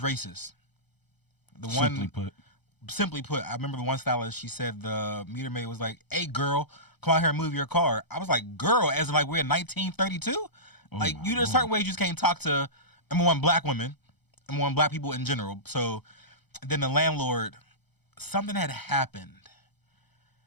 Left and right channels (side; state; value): right; late; 0.98 ms